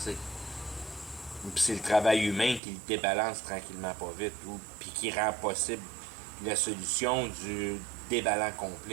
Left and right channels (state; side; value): drops out; left; at 2.6 s